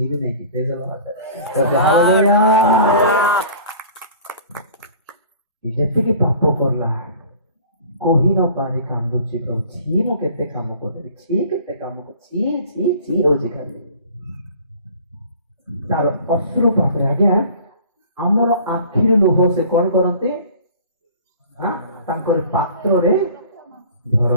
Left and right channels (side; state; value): both; inverted; correlation -0.46